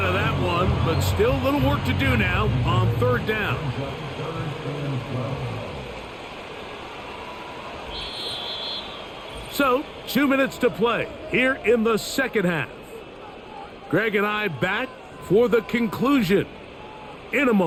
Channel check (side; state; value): both; identical; correlation 1.00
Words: of that one, but still a little work to do now on 3rd down. So, 2 minutes to play here in the second half. Greg and I back for the conclusion in a